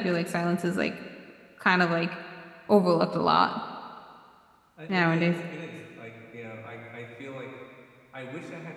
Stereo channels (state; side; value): identical; both; correlation 1.00